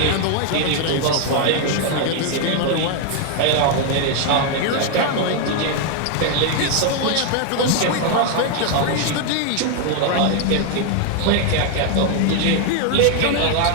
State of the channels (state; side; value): different; both; correlation 0.01